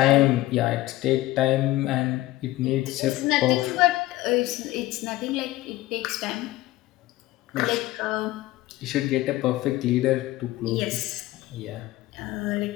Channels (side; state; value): right; quieter; 17.1 dB